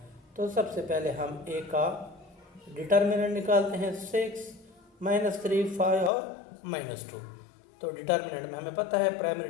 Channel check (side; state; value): right; drops out; at 6.1 s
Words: तो सबसे पहले हम ए का डिटर्मिनेंट निकालते हैं 6 - 3 5 और -2। तो डिटर्मिनेंट में हमें पता है प्राइमरी